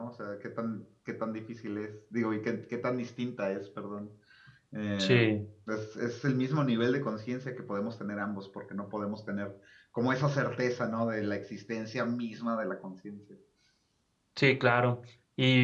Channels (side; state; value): both; identical; correlation 1.00